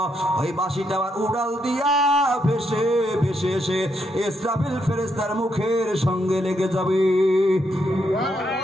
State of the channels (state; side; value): normal; both; correlation 0.78